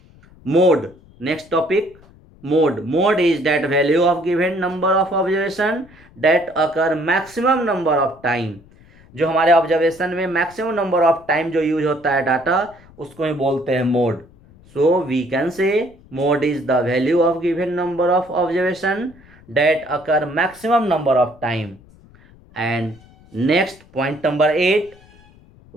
Mode. Next topic, mode. Mode is that value of given number of observation that occur maximum number of time. जो हमारे observation में maximum number of time जो use होता है डाटा, उसको ही बोलते हैं mode. So we can say mode is the value of given number of observation that occur maximum number of time. And next, point number 8,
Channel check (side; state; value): left; noise; rumble, 26 dB below the sound